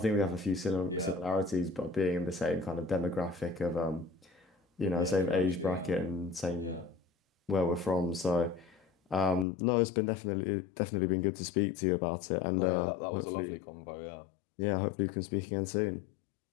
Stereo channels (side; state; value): right; drops out; at 9.5 s